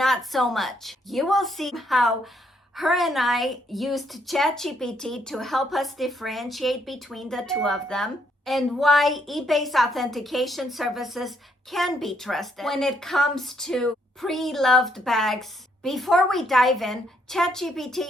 so much. You will see how her and I used ChatGPT to help us differentiate between the two of them, and why eBay's authentication services can be trusted when it comes to pre-loved bags. Before we dive in, ChatGPT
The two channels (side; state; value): both; normal; correlation 0.72